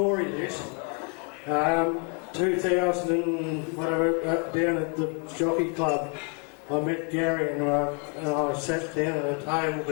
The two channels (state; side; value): quieter; right; 37.9 dB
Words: this. 2000 and whatever, down at the Jockey Club, I met Gary and I sat down at a table